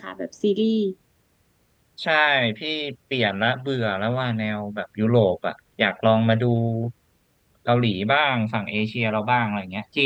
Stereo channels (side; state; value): both; identical; correlation 1.00